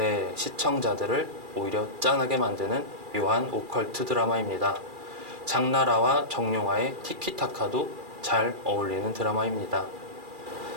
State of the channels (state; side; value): late; left; 2.4 ms